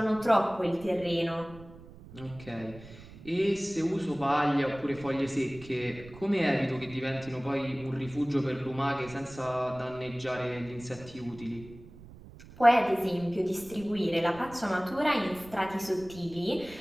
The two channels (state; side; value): noise; right; rumble, 18 dB below the sound